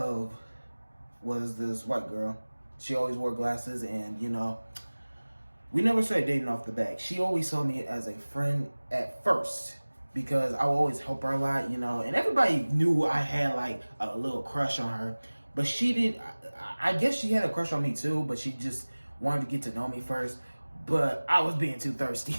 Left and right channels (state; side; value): inverted; both; correlation -1.00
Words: was this white girl. She always wore glasses, and we never started dating off the bat. She always saw me as a friend at first because I would always help her a lot, and everybody knew I had like a little crush on her. But she didn't, I guess she had a crush on me too, but she just wanted to get to know me first. But I was being too thirsty.